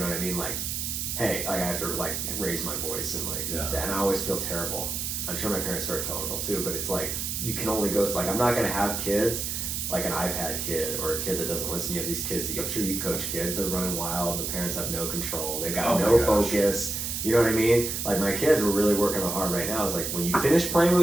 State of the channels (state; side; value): noise; right; hiss, 3 dB below the sound